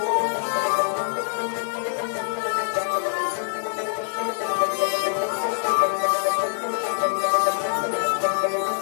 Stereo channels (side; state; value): right; silent; digital silence